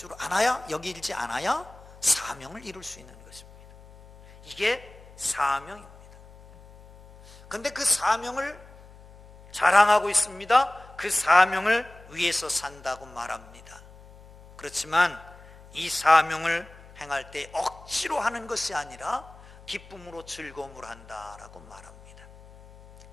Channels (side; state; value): left; noise; hum, 21 dB below the sound